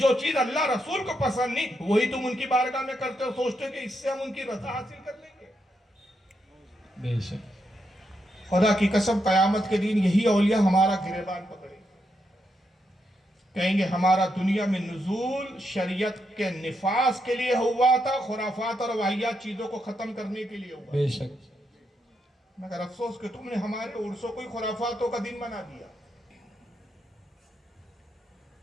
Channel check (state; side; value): normal; both; correlation 0.82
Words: चीज अल्लाह रसूल को पसंद नहीं वही तुम उनकी बारगाह में करते हो, सोचते हो कि इससे हम उनकी रजा हासिल कर लेंगे। बेशक खुदा की कसम कयामत के दिन यही औलिया हमारा गिरेबान पकड़े, कहेंगे हमारा दुनिया में नुज़ूल शरीयत के निफास के लिए हुआ था, खुराफात और वाहियात चीजों को खत्म करने के लिए हुआ। बेशक मगर अफसोस कि तुमने हमारे उर्सों को खुराफातों का दिन बना दिया।